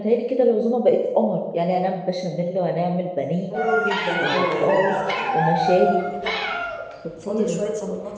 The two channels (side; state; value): both; identical; correlation 1.00